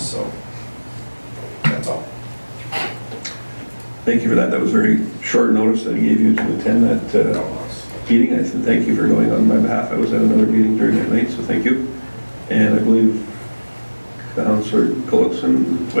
so that's all. Thank you for that. That was very short notice that I gave you to attend that meeting. I said thank you for going on my behalf. I was at another meeting during that night, so thank you. And I believe Councillor Gullickson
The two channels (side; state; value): both; inverted; correlation -1.00